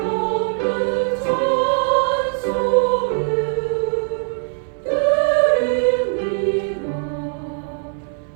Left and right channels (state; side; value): silent; left; 57 dB below the other